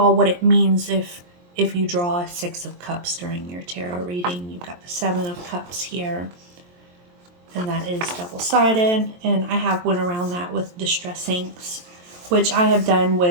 what it means if you draw a Six of Cups during your tarot reading. You've got the Seven of Cups here, and that is double-sided, and I have went around that with distress inks, which I have done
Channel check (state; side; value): late; left; 23 ms